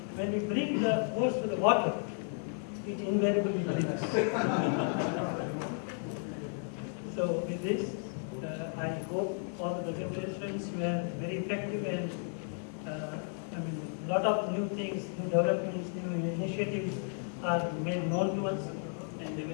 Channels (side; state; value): right; silent; 55 dB below the other